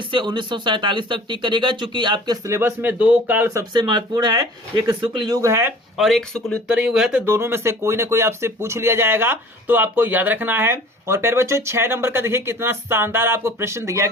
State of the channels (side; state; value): both; normal; correlation 0.46